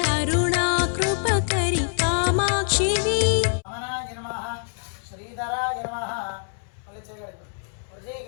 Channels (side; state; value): right; silent; 62 dB below the other